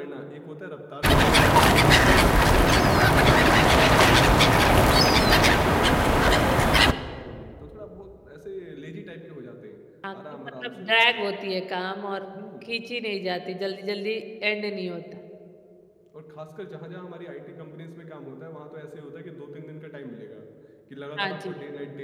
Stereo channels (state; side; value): identical; both; correlation 1.00